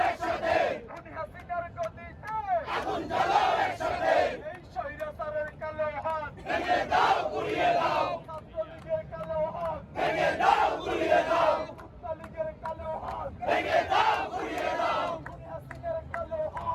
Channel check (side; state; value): both; identical; correlation 1.00